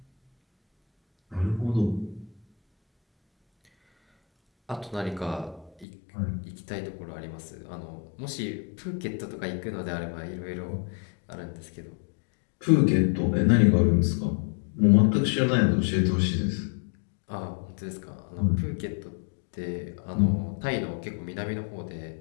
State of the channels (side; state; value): right; drops out; at 5.9 s